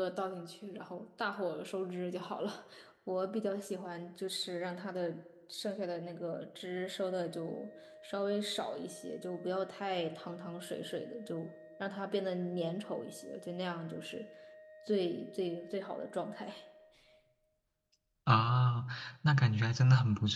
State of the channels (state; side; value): identical; both; correlation 1.00